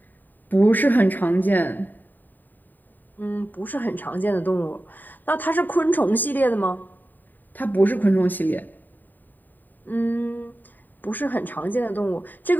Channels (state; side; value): late; right; 0.089 ms